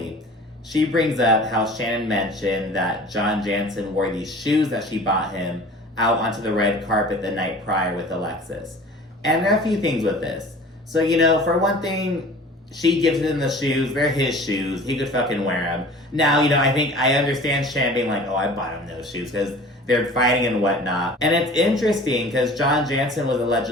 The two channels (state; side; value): normal; both; correlation 0.43